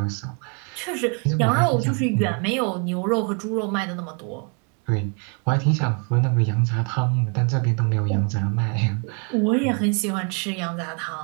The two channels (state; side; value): quieter; left; 35.9 dB